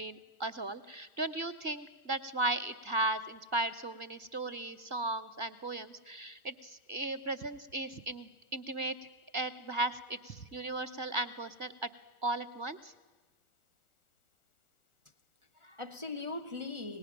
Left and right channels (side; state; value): left; late; 1.4 ms